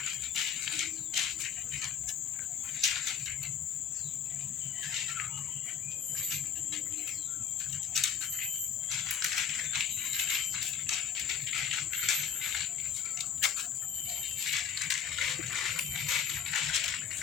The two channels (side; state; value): right; quieter; 7.9 dB